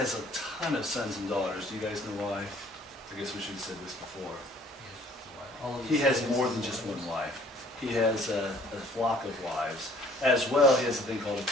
a ton of sons and daughters. Do you guys know why? I guess we should have said this before. He has more than just one wife. He has a flock of wives. As well, he has a thing called a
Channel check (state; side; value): normal; both; correlation 0.57